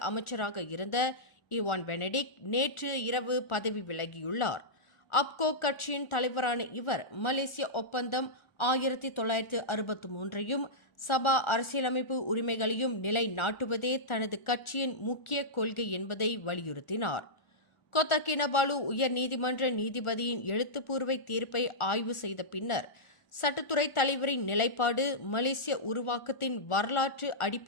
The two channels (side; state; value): right; late; 1.4 ms